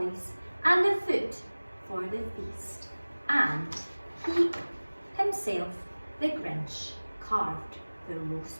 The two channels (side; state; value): both; inverted; correlation -1.00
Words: and the food for the feast, and he himself, the Grinch, carved the